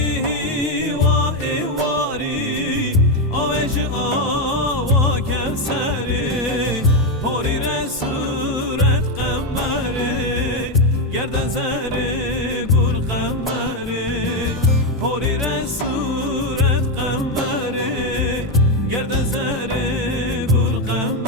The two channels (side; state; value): both; normal; correlation 0.07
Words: و ایواری آوش آوا کفسره پاری رسورت قمره گردن زر گل قمره پاری رسورت قمره گردن زر گل